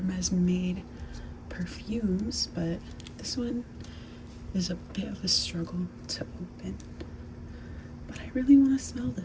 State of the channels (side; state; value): both; identical; correlation 1.00